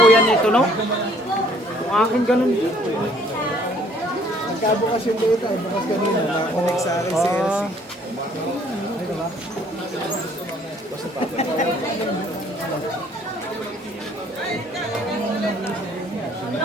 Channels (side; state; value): both; normal; correlation 0.60